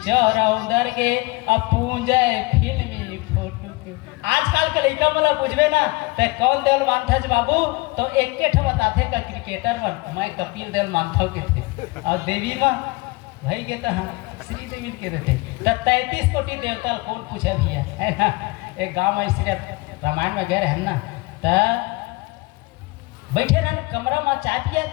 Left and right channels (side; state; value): right; quieter; 24.2 dB